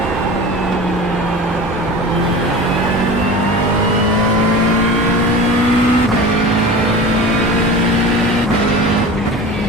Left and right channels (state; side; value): normal; both; correlation 0.34